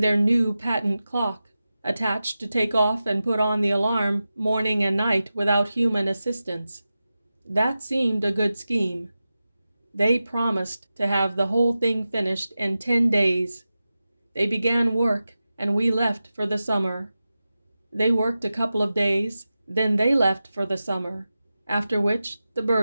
their new patent clock attached to take off and put on the alarm morning and night without human assistance. That seemed a good scheme. They promised to have the whole thing finished in 10 days. They began work, and we left for the summer. They worked a couple of days, then they left for the summer, after which the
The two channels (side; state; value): both; inverted; correlation -0.93